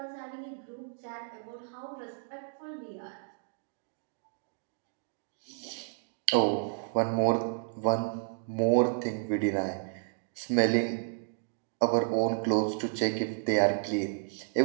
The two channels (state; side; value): silent; left; digital silence